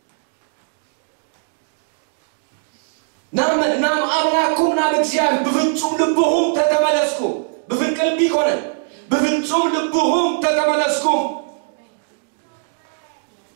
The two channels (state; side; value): silent; left; digital silence